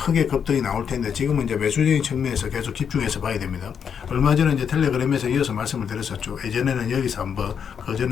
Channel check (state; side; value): quieter; right; 7.4 dB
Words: 급등이 나올 텐데 지금은 이제 매수적인 측면에서 계속 집중해서 봐야 됩니다. 얼마 전에 이제 텔레그램에서 이어서 말씀을 드렸었죠. 예전에는 여기서 한번, 그